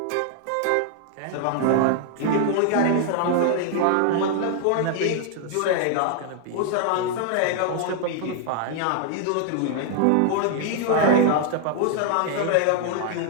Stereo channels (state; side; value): different; both; correlation 0.00